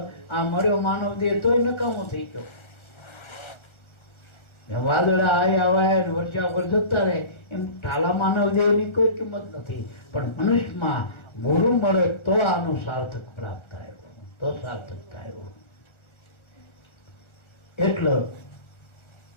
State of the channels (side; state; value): right; late; 1.4 ms